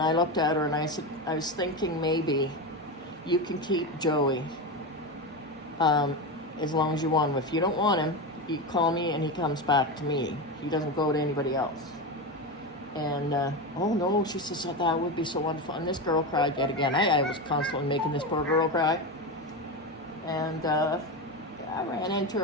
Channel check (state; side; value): normal; both; correlation 0.17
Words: looked at her and I said, "I was thinking maybe you can keep Joey as long as you want him. If you don't want him, you call me and he comes back to me. He doesn't go to anybody else." And, "Oh no," she says, "that would be so wonderful." And this girl cried yet again. I was constantly making this poor girl cry. And I ran into